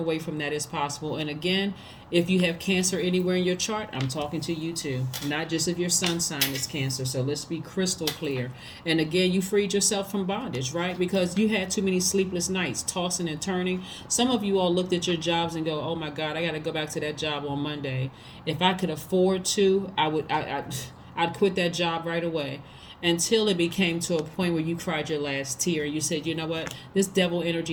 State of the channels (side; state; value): both; identical; correlation 1.00